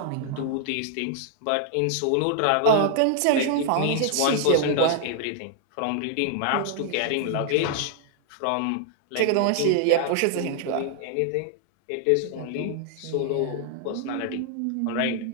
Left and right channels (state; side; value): different; both; correlation 0.00